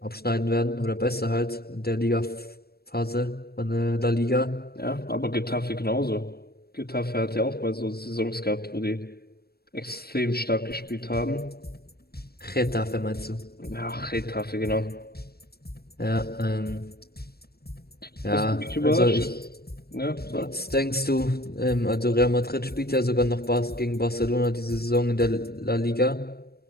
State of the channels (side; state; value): right; late; 0.46 ms